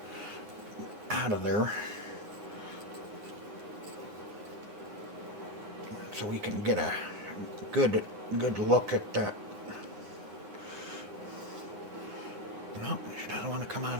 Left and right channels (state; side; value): late; left; 9.8 ms